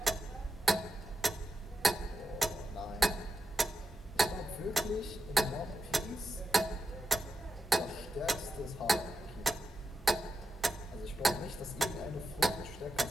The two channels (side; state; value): both; normal; correlation 0.89